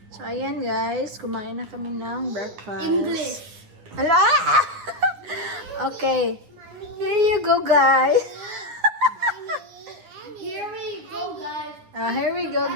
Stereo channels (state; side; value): late; left; 9.4 ms